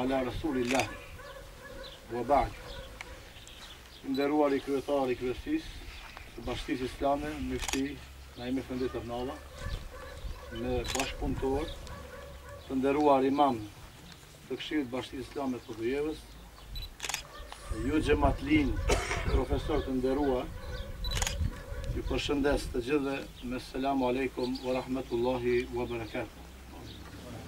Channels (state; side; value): identical; both; correlation 1.00